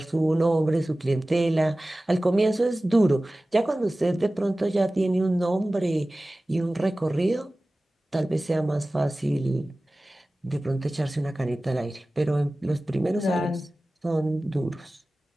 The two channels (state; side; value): normal; both; correlation 0.97